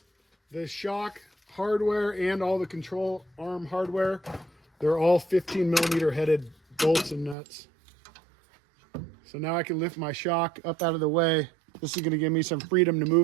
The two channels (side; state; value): left; drops out; at 7.4 s